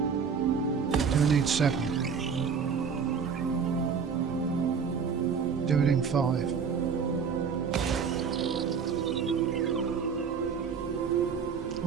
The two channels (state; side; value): quieter; left; 6.2 dB